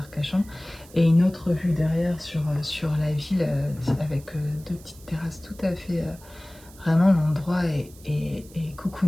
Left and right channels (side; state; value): right; noise; hiss, 23 dB below the sound